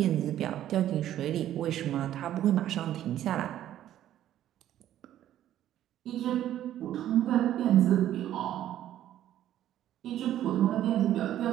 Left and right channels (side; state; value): left; quieter; 12.1 dB